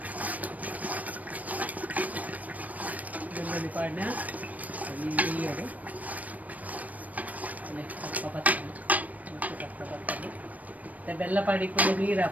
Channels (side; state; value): left; late; 0.073 ms